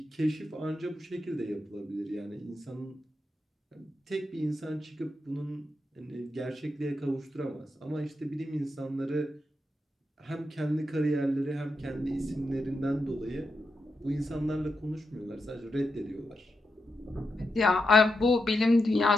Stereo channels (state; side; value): normal; both; correlation 0.86